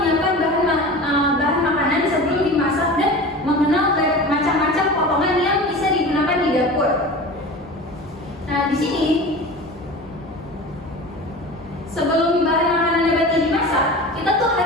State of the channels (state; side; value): normal; both; correlation 0.34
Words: bahan makanan sebelum dimasak dan mengenal macam-macam potongan yang bisa digunakan di dapur. Nah, di sini sebelum bahan makanan nabati dimasak, kita tuh